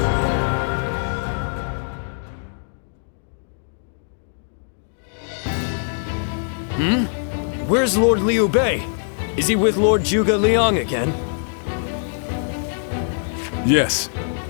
Where's Lord Liu Bei? Is he with Lord Zhuge Liang again? Yes.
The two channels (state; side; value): silent; right; digital silence